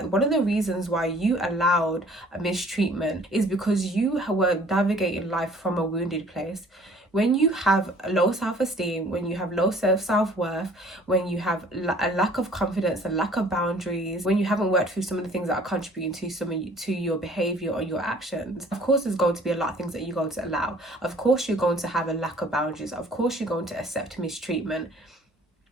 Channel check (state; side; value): normal; both; correlation 0.54